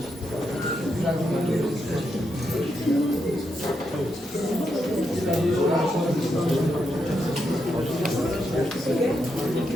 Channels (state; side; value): normal; both; correlation 0.82